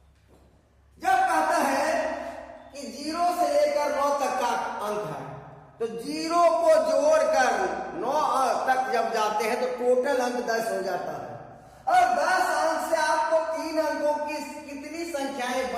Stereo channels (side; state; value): both; identical; correlation 1.00